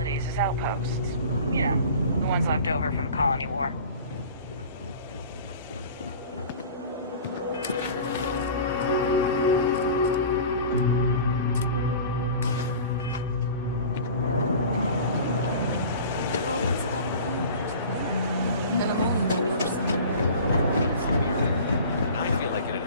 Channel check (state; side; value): inverted; both; correlation -0.40